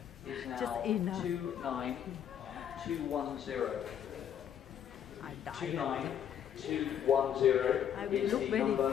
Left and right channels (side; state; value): right; quieter; 9.3 dB